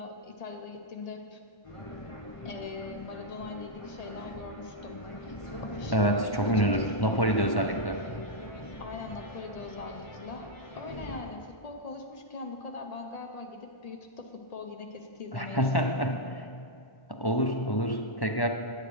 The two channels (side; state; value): right; late; 1.1 ms